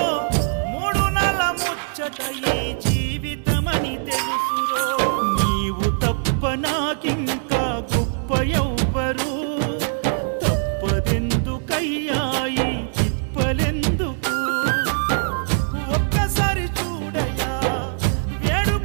మూడు నెల ముచ్చట ఈ జీవితమని తెలుసురో నీవు తప్ప నాకింకా గొప్ప ఎవ్వరు తప్పదెందుకయ్యాయి తిప్పలెందుకు ఒక్కసారి చూడయా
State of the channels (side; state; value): left; silent; digital silence